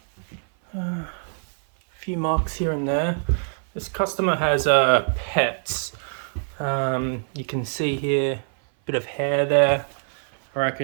A few marks here and there. This customer has pets. You can see here a bit of hair there. I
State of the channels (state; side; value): silent; left; 59 dB below the other